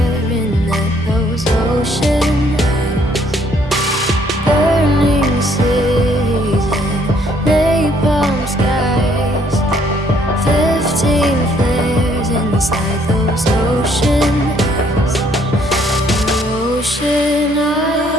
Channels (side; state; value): both; normal; correlation 0.66